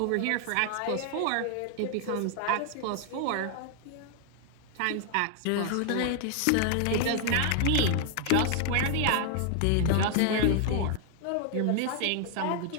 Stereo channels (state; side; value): different; both; correlation 0.00